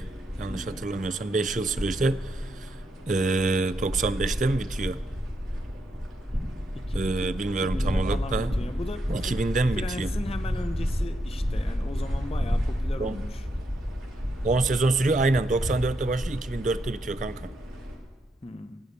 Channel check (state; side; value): normal; both; correlation 0.80